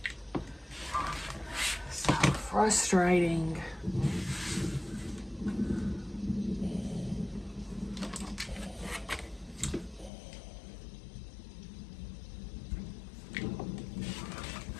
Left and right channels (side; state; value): right; drops out; at 10.1 s